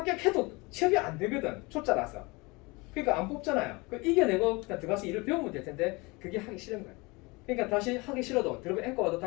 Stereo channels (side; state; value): right; quieter; 25.4 dB